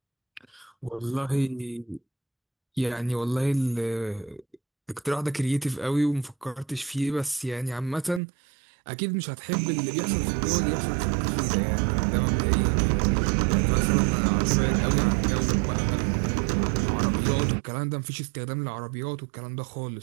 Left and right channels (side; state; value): left; drops out; at 8.2 s